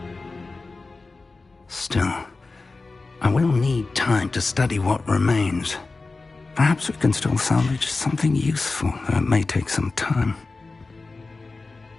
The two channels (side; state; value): right; quieter; 3.7 dB